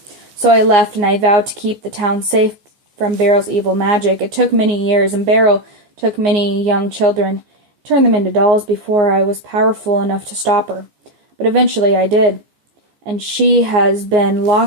So I left, and I vowed to keep the town safe from Beryl's evil magic. It took many years, and Beryl took many young children, turned them into dolls before I was powerful enough to stop her. But eventually I did, and she has been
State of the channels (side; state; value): left; late; 14 ms